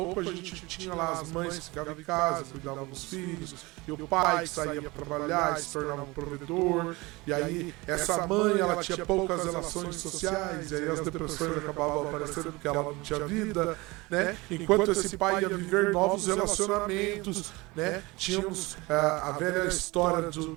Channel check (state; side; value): quieter; left; 23.1 dB